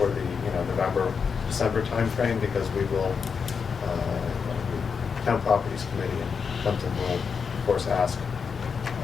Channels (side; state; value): right; quieter; 6.0 dB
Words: the November, December timeframe, because we will, Town Properties Committee and Plympton will, of course, ask